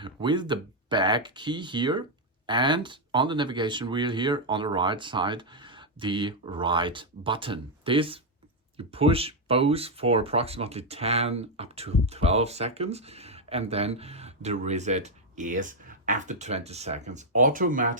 with the back key here, and on the navigation wheel here on the right side, the right button. This you push both for approximately 10 up to 12 seconds, and then the reset is after 20 seconds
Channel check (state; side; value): normal; both; correlation 0.00